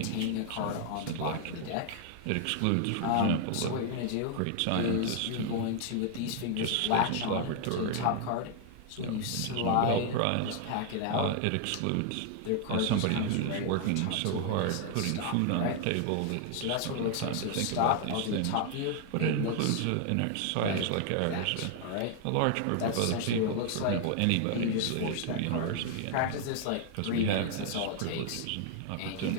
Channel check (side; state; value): both; different; correlation 0.00